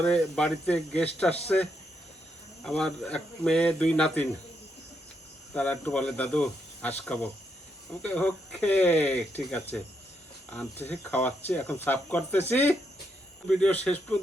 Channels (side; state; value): both; normal; correlation 0.79